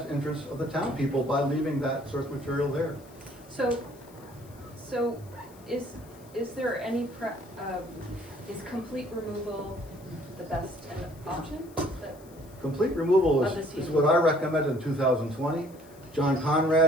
interests of the town people by leaving that source material there. So is there any is complete removal the best option? Complete removal Of this is what I recommended in 2020. John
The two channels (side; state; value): left; noise; hiss, 25 dB below the sound